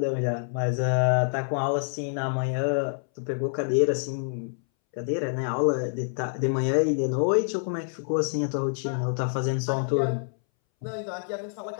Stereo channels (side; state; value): right; silent; 60 dB below the other